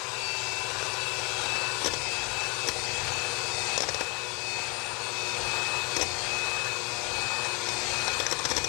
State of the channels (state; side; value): quieter; right; 30.6 dB